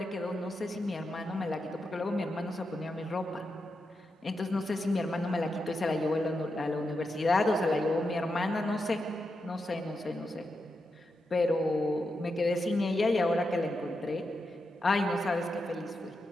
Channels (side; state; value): both; normal; correlation 0.87